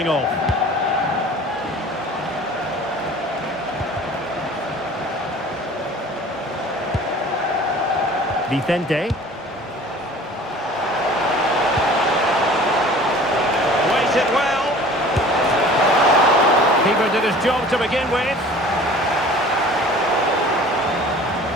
off. Vicente. Waited well. Keeper did his job to begin with.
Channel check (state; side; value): normal; both; correlation 0.46